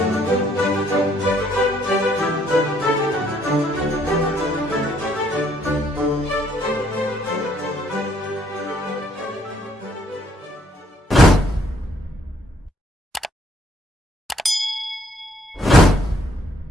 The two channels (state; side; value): normal; both; correlation 0.67